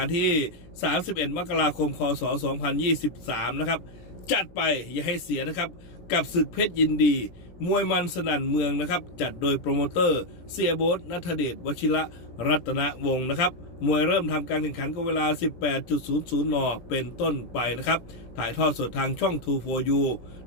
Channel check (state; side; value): late; right; 17 ms